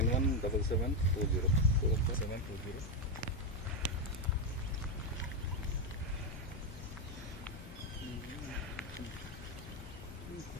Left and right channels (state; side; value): normal; both; correlation 0.06